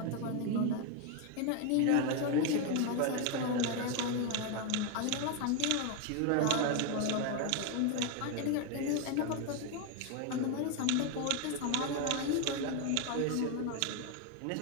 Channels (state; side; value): different; both; correlation 0.01